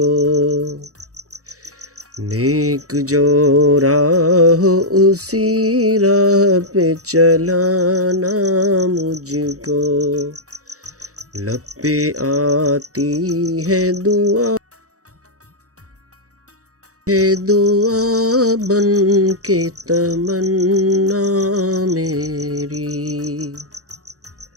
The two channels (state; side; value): late; left; 0.66 ms